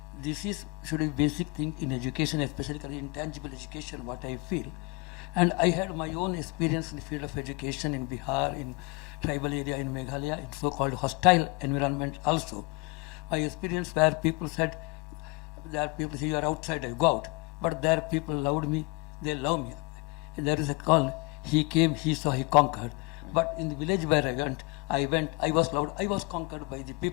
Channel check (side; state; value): right; quieter; 26.9 dB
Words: should be basic thing in education, especially intangible education, what I feel. And I had my own experience in the field of education in Bihar, in tribal area, in Meghalaya, in so-called hostile environment also. My experience where people said, there are people say you are outside, I go out. But there people loved me, they love me. And there is a call, he came, he saw, he conquered. But in the village where I went, I was loved, I was conquered by the